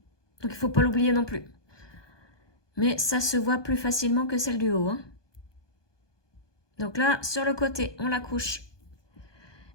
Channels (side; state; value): right; late; 1.2 ms